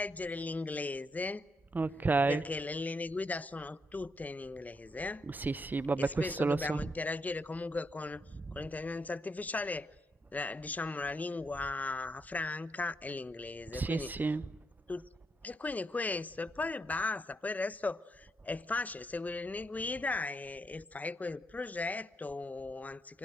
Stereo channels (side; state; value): both; normal; correlation 0.78